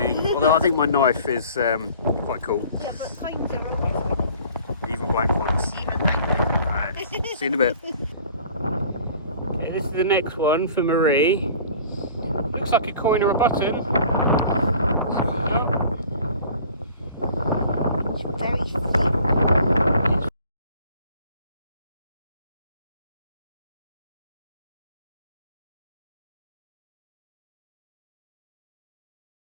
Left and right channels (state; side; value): inverted; both; correlation -0.49